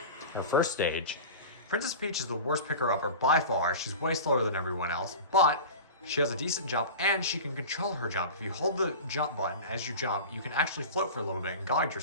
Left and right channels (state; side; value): inverted; both; correlation -0.32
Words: Her first stage. Princess Peach is the worst picker-upper by far. She's way slower than everyone else, but she has a decent jump and she can control her jump. If you hold the jump button as you jump, you can actually float for a little bit and guide